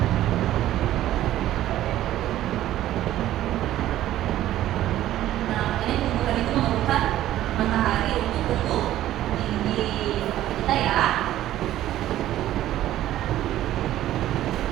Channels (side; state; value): left; quieter; 13.5 dB